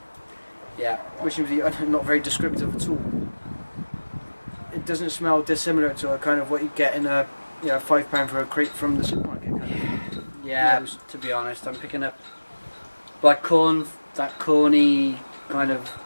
Yeah. wishing to be not very descriptive at all. It doesn't smell dissimilar to a kind of what you get in a £5 for a crate from the supermarket. Kind of. Yeah, to be honest, I'm picking up black corn, that corny kind of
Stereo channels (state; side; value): inverted; both; correlation -1.00